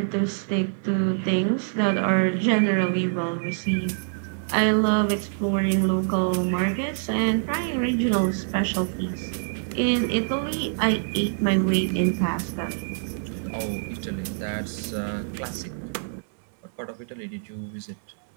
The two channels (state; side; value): silent; left; digital silence